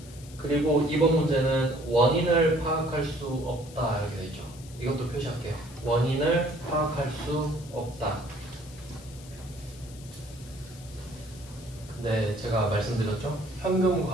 그리고 이번 문제는 원인을 파악할 수 없다 이렇게 돼 있죠. 이것도 표시할게요. 원인을 파악할 수 없다. 근데 제가 말씀드렸죠. 현금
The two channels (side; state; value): left; noise; hiss, 20 dB below the sound